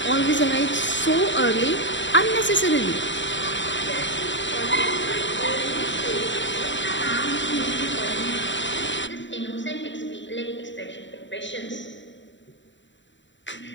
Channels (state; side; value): late; right; 0.54 ms